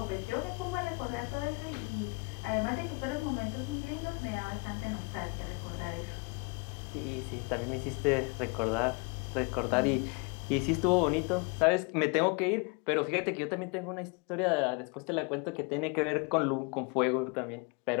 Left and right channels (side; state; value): right; quieter; 31.1 dB